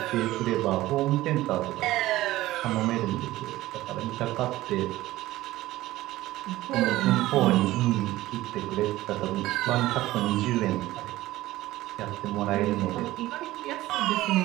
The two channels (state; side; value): quieter; left; 16.7 dB